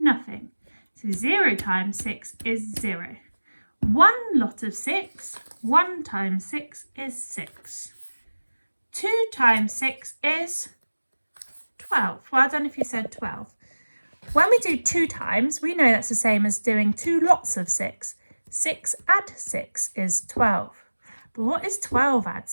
So 0 times 6 is 0. 1 lot of 6, 1 times 6 is 6. 2 times 6 is 12. Well done if you said 12. When we do 2 times, we know that's the same as doing 2 lots of 6. 6 add 6 is 12. But what is 12 add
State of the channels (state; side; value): inverted; both; correlation -1.00